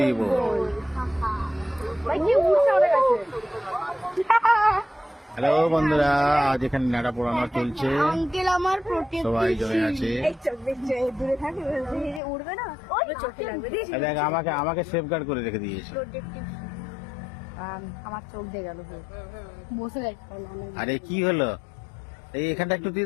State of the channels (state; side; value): drops out; right; at 12.2 s